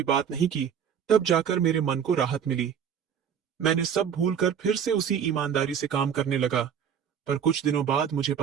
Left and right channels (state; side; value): quieter; left; 8.1 dB